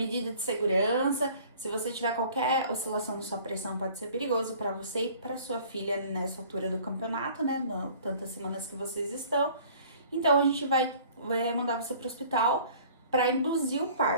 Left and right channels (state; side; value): inverted; both; correlation -0.51